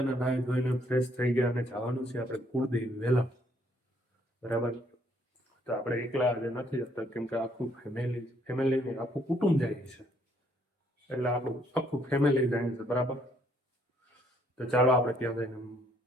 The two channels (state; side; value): normal; both; correlation 0.67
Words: નાહી ધોઈને ફ્રેશ થઈ ગયા અને જવાનું છે આપણે કુળદેવી વેલા બરાબર તો આપણે એકલા આજે નથી જતા કેમ કે આખું ફેમિલી આખું કુટુંબ જાય છે એટલે આપણું આખું ફેમિલી જાય છે બરાબર તો ચાલો આપણે ત્યાં જઈને